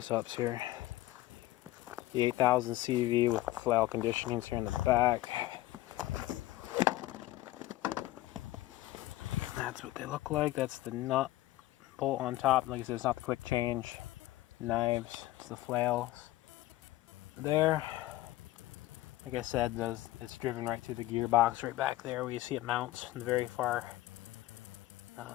here. The EC800CV with flail conditionings here in the back. That's what they look like. That's the nut bolt on top. Like I said, it's not the quick change knives, it's the flails there. Like I said, it's driven right through the gearbox right back there where you see it mounts in the very far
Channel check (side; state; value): right; quieter; 16.6 dB